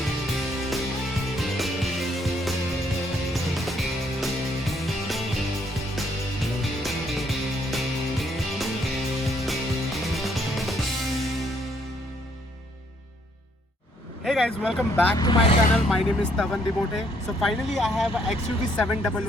Hey guys, welcome back to my channel. My name is Tavan Dibote. So finally I have a XUV 700,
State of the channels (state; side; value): normal; both; correlation 0.68